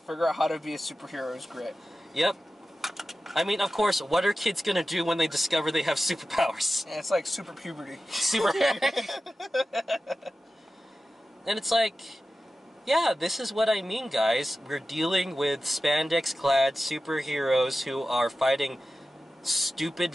out how to be a superhero is great. Yep. I mean, of course, what are kids gonna do when they discover they have superpowers? Yeah, it's like super puberty. And it's like, yeah, this is what I mean, guys. We're dealing with spandex-clad superheroes who are fighting stupid,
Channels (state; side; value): normal; both; correlation 0.94